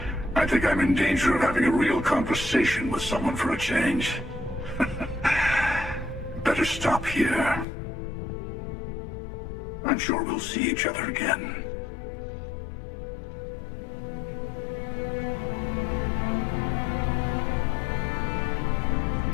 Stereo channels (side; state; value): right; drops out; at 7.7 s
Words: I think I'm in danger of having a real conversation with someone for a change. Better stop here. I'm sure we'll see each other again.